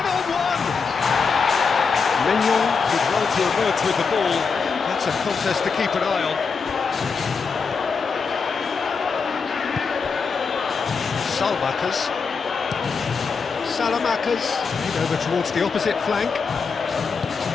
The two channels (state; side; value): quieter; right; 5.3 dB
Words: Milan did well to emerge with the ball. That's a contest to keep an eye on. Salamakas over towards the opposite flank.